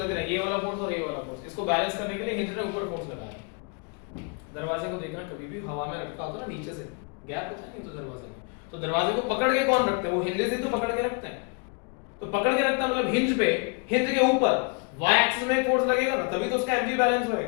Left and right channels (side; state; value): right; quieter; 35.4 dB